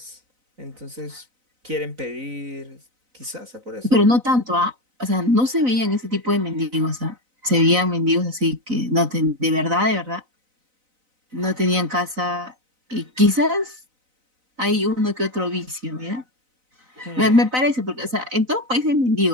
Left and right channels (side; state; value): left; late; 4.0 ms